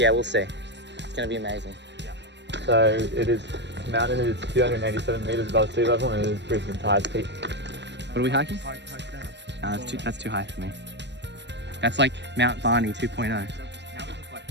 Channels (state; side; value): late; left; 0.51 ms